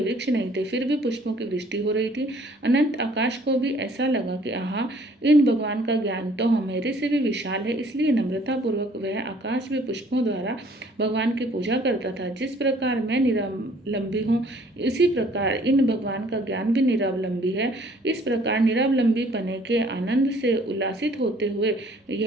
वृक्ष नहीं थे, फिर भी पुष्पों की वृष्टि हो रही थी। अनंत आकाश को भी ऐसा लगा कि आहा, इन भगवान का ज्ञान तो हमारे से भी विशाल है। इसलिए नम्रतापूर्वक वह आकाश में पुष्पों द्वारा भगवान की पूजा करता था। जिस प्रकार मैं निरावलंबी हूँ, इसी प्रकार इन भगवान का ज्ञान भी निरावलंबी है। इस प्रकार निरावलंबी पने के आनंद से उल्लासित होते हुए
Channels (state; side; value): normal; both; correlation 0.58